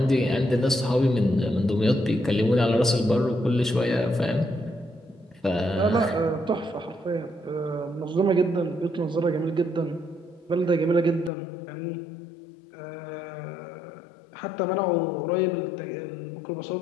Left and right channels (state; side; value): drops out; right; at 11.3 s